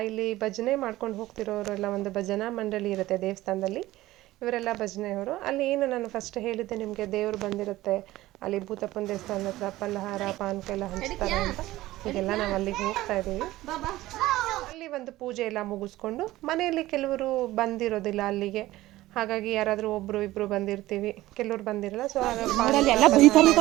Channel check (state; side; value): quieter; left; 16.7 dB